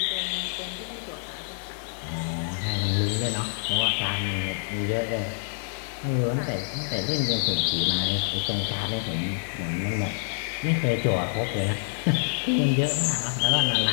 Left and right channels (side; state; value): right; silent; 60 dB below the other